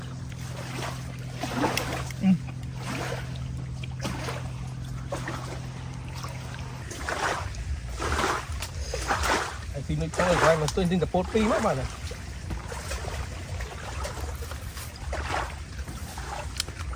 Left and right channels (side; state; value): both; identical; correlation 1.00